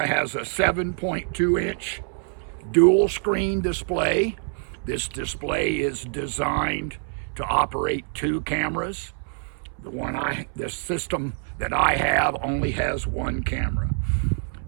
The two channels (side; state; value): left; silent; 62 dB below the other